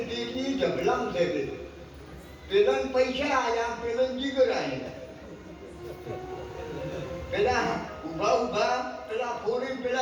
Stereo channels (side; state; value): both; identical; correlation 1.00